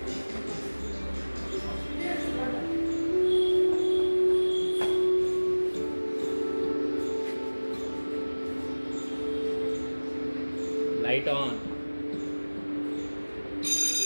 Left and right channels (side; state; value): both; inverted; correlation -1.00